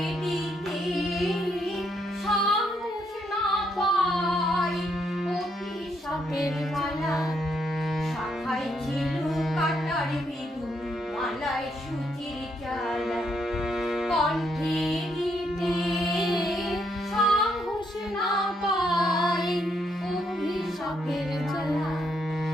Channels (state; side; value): normal; both; correlation 0.75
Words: দিতে সাহস না পাই অভিশাপের মালা। শাখায় ছিল কাটার বেদু, মালায় সুধীর জ্বালা, কণ্ঠে দিতে সাহস না পাই অভিশাপের জ্বালা।